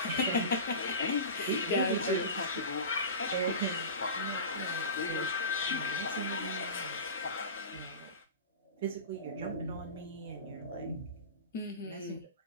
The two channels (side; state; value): both; inverted; correlation -0.30